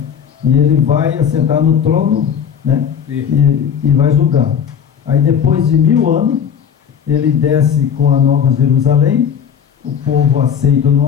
E ele vai assentar no trono, né? E vai julgar. Aí depois de 1000 anos, ele desce com a Nova Jerusalém, o povo aceita ou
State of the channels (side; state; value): right; quieter; 7.9 dB